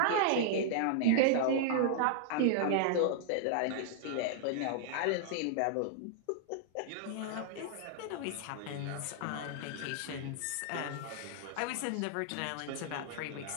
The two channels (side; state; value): both; different; correlation -0.01